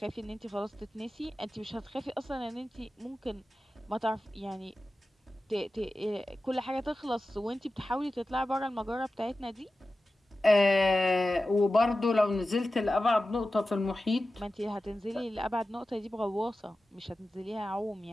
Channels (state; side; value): normal; both; correlation 0.94